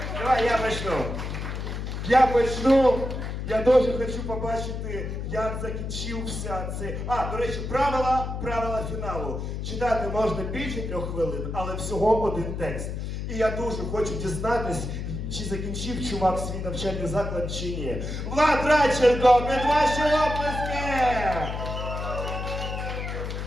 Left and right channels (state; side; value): noise; left; hum, 5 dB below the sound